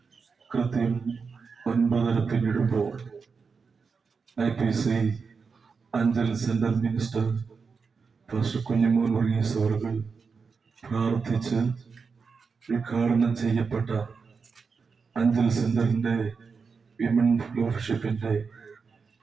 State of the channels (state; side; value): quieter; left; 5.2 dB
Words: കൃത്യം 9:30 പിന്നിടുമ്പോൾ IPC Anchal centre minister pastor Kunjimon Varghese അവர்கள் പ്രാർത്ഥിച്ച് ഉദ്ഘാടനം ചെയ്യപ്പെട്ട അഞ്ചൽ സെന്ററിന്റെ വിമൻ ഫെലോഷിപ്പിന്റെ